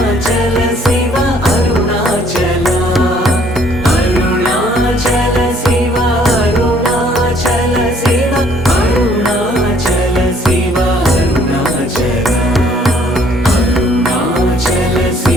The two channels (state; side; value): normal; both; correlation 0.61